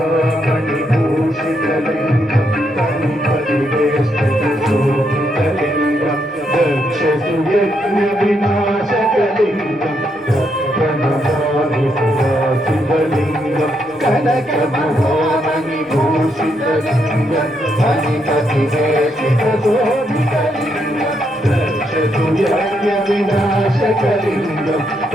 వినాశకలింగం ప్రణమామి శివలింగం కనక మహామణి భూషితలింగం హరిపతి శోభితలింగం రక్షతు యజ్ఞ వినాశకలింగం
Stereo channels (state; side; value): normal; both; correlation 0.78